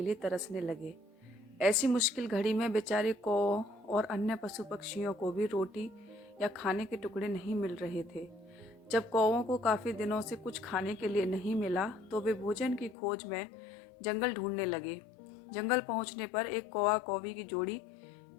लिए तरसने लगे। ऐसी मुश्किल घड़ी में बेचारे कौओं और अन्य पशु पक्षियों को भी रोटी या खाने के टुकड़े नहीं मिल रहे थे। जब कौओं को काफ़ी दिनों से कुछ खाने के लिए नहीं मिला तो वे भोजन की खोज में जंगल ढूंढने लगे। जंगल पहुंचने पर एक कौवा कौवी की जोड़ी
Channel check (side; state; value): right; drops out; at 13.0 s